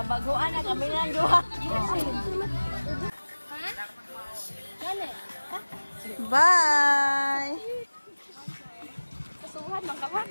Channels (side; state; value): both; inverted; correlation -1.00